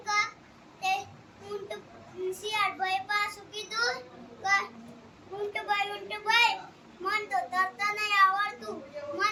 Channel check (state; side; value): identical; both; correlation 1.00